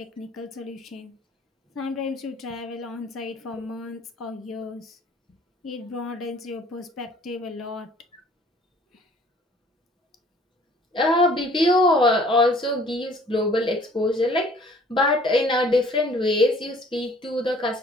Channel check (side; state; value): both; normal; correlation 0.55